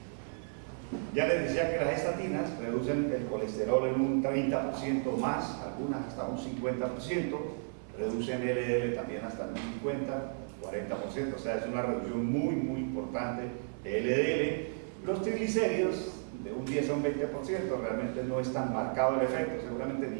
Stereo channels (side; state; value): left; silent; 55 dB below the other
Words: Ya les decía que las estatinas reducen el colesterol en un 30% más, algunas hasta un 50%, reducen LDL también hasta un 50, 40%, o sea, es una reducción muy, muy importante de LDL. Los triglicéridos de un 10 a un 20%, realmente no es tan marcado el efecto, seguramente